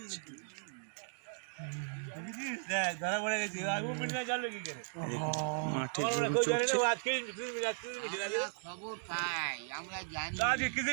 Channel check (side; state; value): left; silent; digital silence